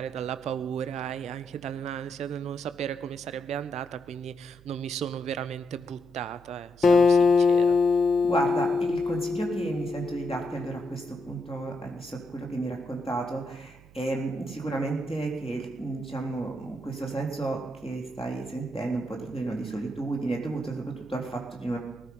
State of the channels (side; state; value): right; noise; hum, 23 dB below the sound